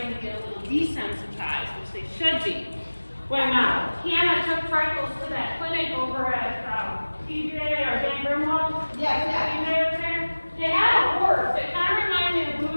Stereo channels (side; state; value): both; inverted; correlation -1.00